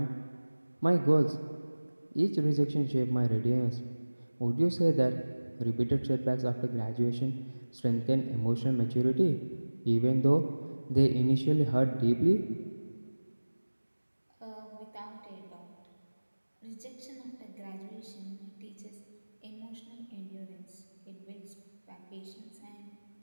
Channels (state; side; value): inverted; both; correlation -1.00